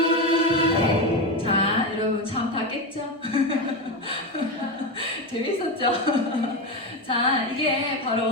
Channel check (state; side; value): normal; both; correlation 0.15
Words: 자, 여러분 참 다 깼죠? 재밌었죠? 자, 이게